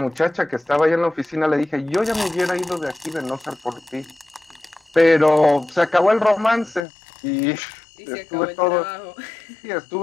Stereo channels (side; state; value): right; drops out; at 6.9 s